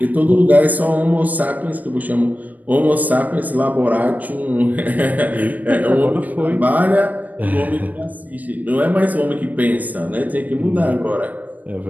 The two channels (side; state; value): left; late; 0.079 ms